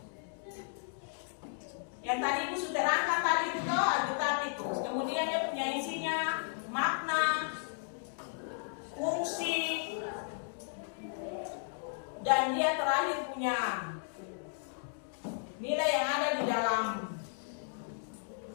Yang tadi Ibu sudah terangkan tadi itu Alkitab itu. Kemudian dia punya isinya, makna, fungsi, dan dia terakhir punya nilai yang ada di dalam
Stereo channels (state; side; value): silent; right; digital silence